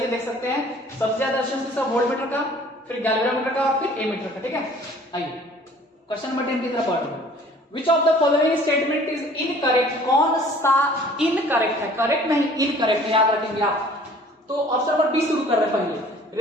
है, देख सकते हैं। सबसे ज्यादा रेजिस्टेंस किसका? वोल्ट मीटर का, फिर गैल्वेनोमीटर का और फिर ए मीटर का। ठीक है, आइए क्वेश्चन नंबर 10 की तरफ बढ़ते हैं। Which of the following statement is incorrect? कौन सा इनकरेक्ट है? करेक्ट नहीं, इनकरेक्ट है, याद रखेंगे आप। तो ऑप्शन नंबर बी शुरू कर रहे हैं पहले।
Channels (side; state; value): both; normal; correlation 0.52